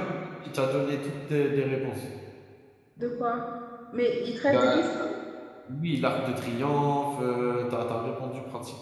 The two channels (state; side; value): identical; both; correlation 1.00